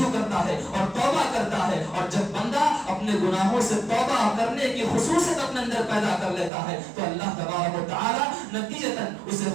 کرتا ہے اور توبہ کرتا ہے. اور جب بندہ اپنے گناہوں سے توبہ کرنے کی خصوصیت اپنے اندر پیدا کر لیتا ہے تو اللہ تبارک و تعالی نتیجتاً اسے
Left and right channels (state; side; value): drops out; left; at 6.5 s